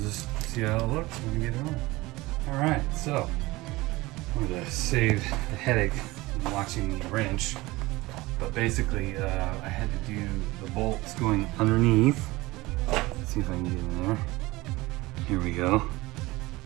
see how it looks when we get it on. Alright, so I'm going to save the headache of watching the wrench. But basically, I had to do the bolts going underneath. Let's see if I can get in there. Here we go.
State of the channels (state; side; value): quieter; left; 20.5 dB